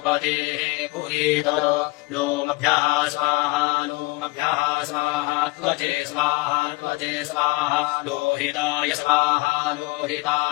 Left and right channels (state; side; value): quieter; right; 24.6 dB